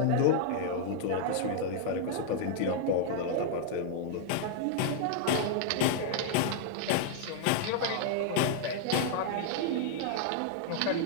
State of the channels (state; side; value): different; both; correlation -0.01